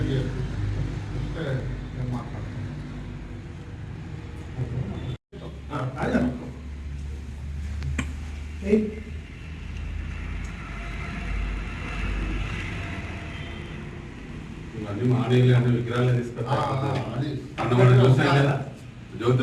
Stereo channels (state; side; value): identical; both; correlation 1.00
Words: నేను మాట్లాడతాను ఇవన్నీ మానేయాలి అంటే విగ్రహాలు తీసుకొద్దాం అన్నమాట చూసాయి కదా